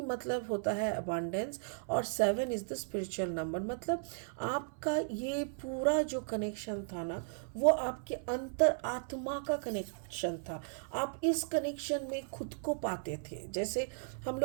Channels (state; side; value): silent; left; 54 dB below the other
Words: मतलब होता है अबांडेंस, और 7 इज़ द स्पिरिचुअल नंबर। मतलब आपका ये पूरा जो कनेक्शन था ना, वो आपके अंतर आत्मा का कनेक्शन था। आप इस कनेक्शन में खुद को पाते थे। जैसे हम